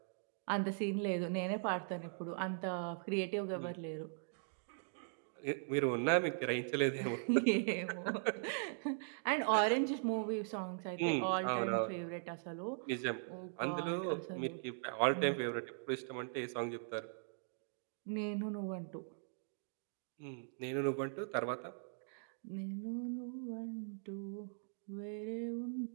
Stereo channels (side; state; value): left; silent; digital silence